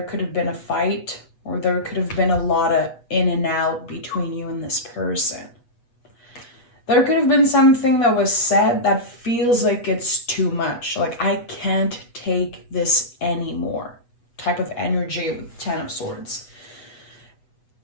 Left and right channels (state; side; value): late; right; 8.2 ms